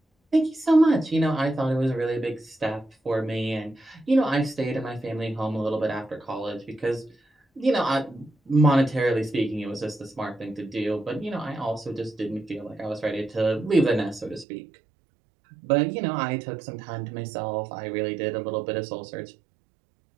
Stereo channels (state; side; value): drops out; left; at 14.5 s